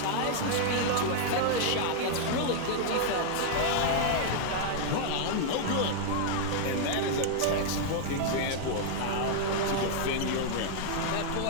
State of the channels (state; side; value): different; both; correlation -0.01